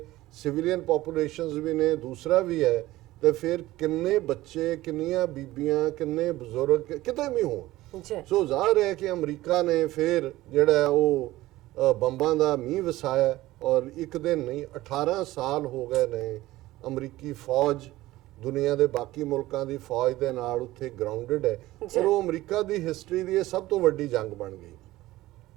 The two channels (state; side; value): quieter; left; 17.0 dB